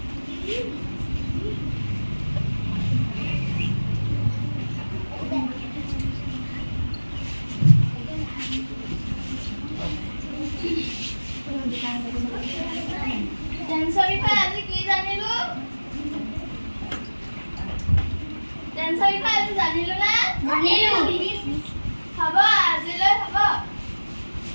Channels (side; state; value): both; inverted; correlation -1.00